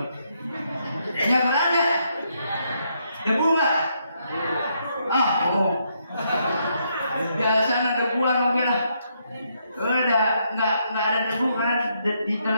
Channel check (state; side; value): inverted; both; correlation -0.76